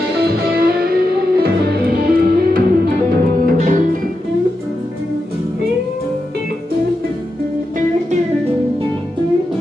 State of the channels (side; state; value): both; normal; correlation 0.88